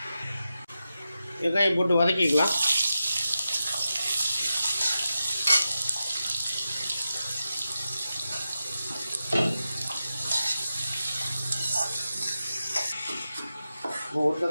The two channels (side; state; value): both; inverted; correlation -0.90